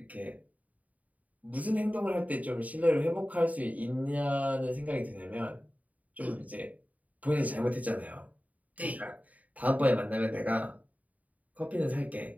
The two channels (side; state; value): left; late; 0.072 ms